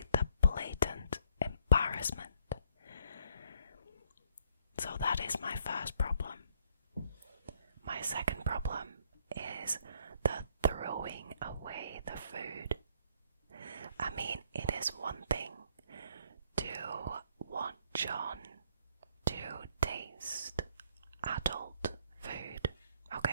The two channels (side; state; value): both; inverted; correlation -0.67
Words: the blatant embarrassment. So that is my first problem. My second problem is the throwing away the food. I mean, it is one thing to want John to taste adult food,